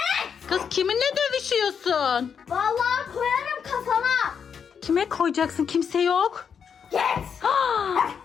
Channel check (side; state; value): right; quieter; 7.0 dB